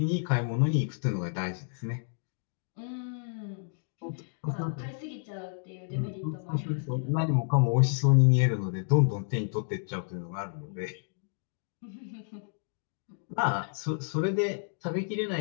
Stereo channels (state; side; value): silent; right; digital silence